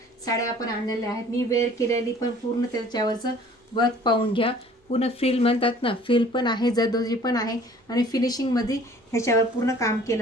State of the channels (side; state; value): both; normal; correlation 0.52